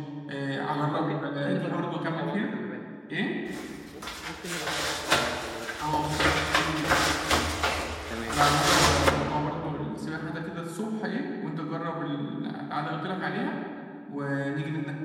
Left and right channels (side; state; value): both; identical; correlation 1.00